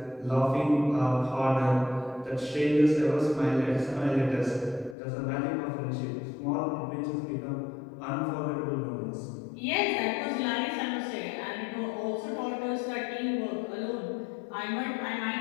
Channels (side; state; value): right; drops out; at 5.0 s